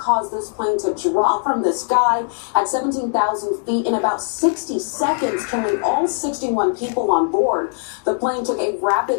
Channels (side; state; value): right; silent; 57 dB below the other